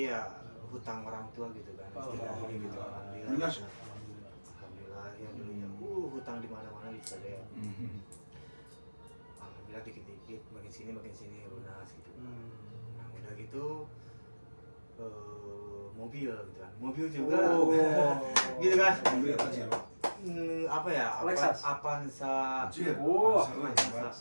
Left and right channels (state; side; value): inverted; both; correlation -1.00